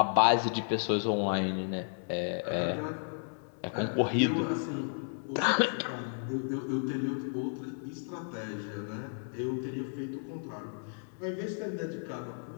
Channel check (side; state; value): right; silent; digital silence